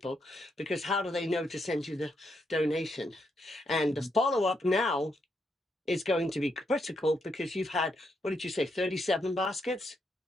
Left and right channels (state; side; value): normal; both; correlation 0.79